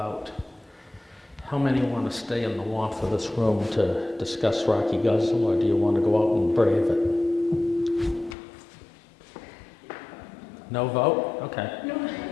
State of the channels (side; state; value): right; drops out; at 8.3 s